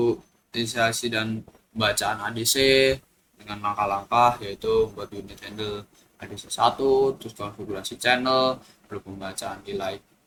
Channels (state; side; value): identical; both; correlation 1.00